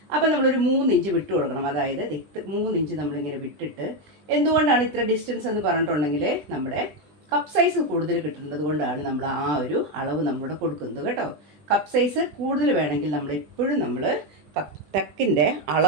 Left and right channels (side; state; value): left; late; 20 ms